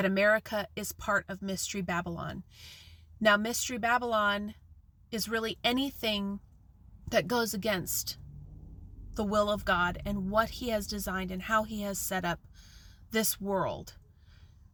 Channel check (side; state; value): both; identical; correlation 1.00